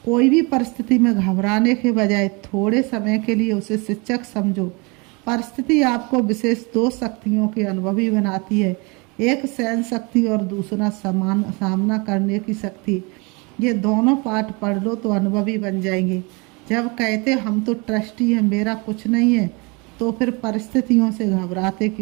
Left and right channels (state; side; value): quieter; left; 29.0 dB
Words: कोई भी परिस्थिति में घबराने के बजाय थोड़े समय के लिए उसे शिक्षक समझो। परिस्थिति आपको विशेष 2 शक्तियों के अनुभवी बनाती है, एक सहन शक्ति और दूसरा सामना करने की शक्ति। ये दोनों पाठ पढ़ लो तो अनुभवी बन जाएंगे। जब कहते हम तो ट्रस्टी हैं, मेरा कुछ नहीं है, तो फिर परिस्थितियों से घबराते